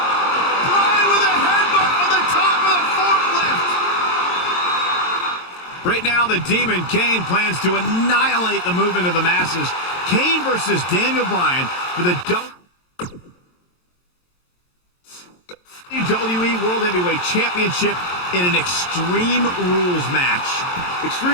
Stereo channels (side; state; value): right; late; 22 ms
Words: Bryan with a headbutt on the top of the forklift. Right now, the Demon Kane plans to annihilate the movement of the masses. Kane versus Daniel Bryan for the WWE World Heavyweight Championship in an Extreme Rules match.